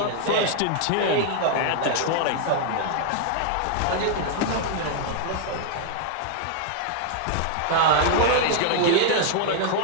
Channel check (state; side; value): different; both; correlation 0.00